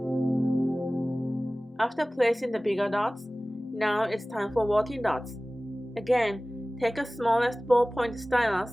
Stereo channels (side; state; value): both; normal; correlation 0.98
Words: After placing the bigger dots, now it's time for walking dots. Again, take a smallest ballpoint stylus